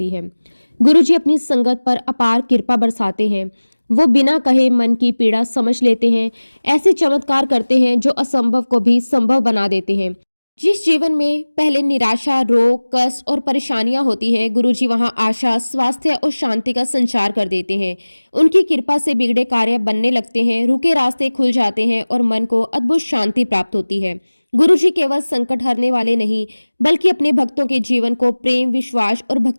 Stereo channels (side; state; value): both; inverted; correlation -1.00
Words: है। गुरुजी अपनी संगत पर अपार कृपा बरसाते हैं। वो बिना कहे मन की पीड़ा समझ लेते हैं। ऐसे चमत्कार करते हैं जो असंभव को भी संभव बना देते हैं। जिस जीवन में पहले निराशा, रोग, कष्ट और परेशानियां होती है, गुरुजी वहां आशा, स्वास्थ्य और शांति का संचार कर देते हैं। उनकी कृपा से बिगड़े कार्य बनने लगते हैं, रुके रास्ते खुल जाते हैं और मन को अद्भुत शांति प्राप्त होती है। गुरुजी केवल संकट हरने वाले नहीं, बल्कि अपने भक्तों के जीवन को प्रेम, विश्वास और